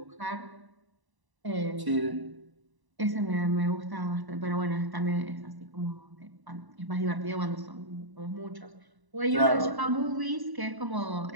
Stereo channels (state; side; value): late; left; 1.0 ms